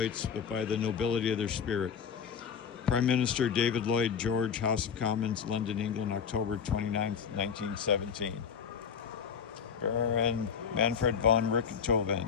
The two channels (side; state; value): right; quieter; 6.9 dB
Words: but by the nobility of their spirit. Prime Minister David Lloyd George, House of Commons, London, England, October 29, 1917. Baron Manfred von